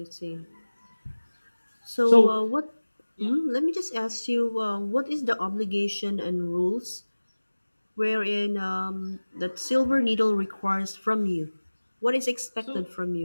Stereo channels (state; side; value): inverted; both; correlation -1.00